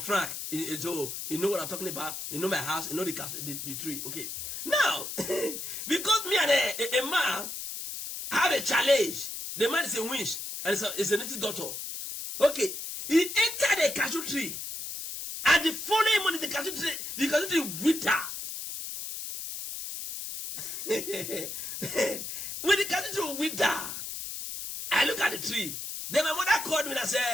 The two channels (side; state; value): left; noise; hiss, 7 dB below the sound